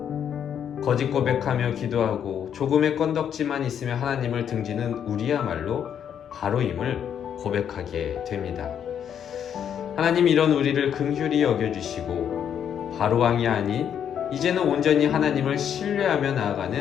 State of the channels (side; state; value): right; quieter; 8.7 dB